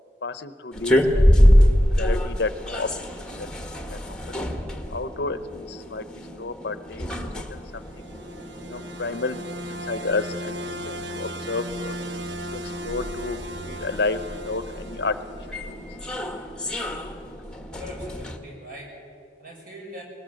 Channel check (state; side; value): normal; both; correlation 0.74